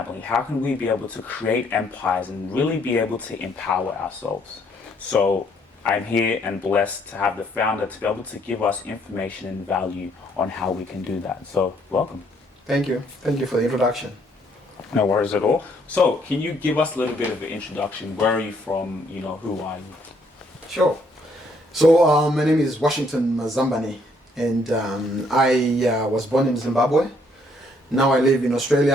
How can we be able to create empires and really be able to empower ourselves? So I'm here and blessed to have the founder to be able to give us information and value on how we can do that. So welcome. Thank you. Thank you for the introduction. No worries at all. So can you give us a little bit of an introduction? Where are you from? You know, who are you? Sure. So my name is Washington Mazambani, and I was born in Zimbabwe. Now I live in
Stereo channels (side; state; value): both; normal; correlation 0.67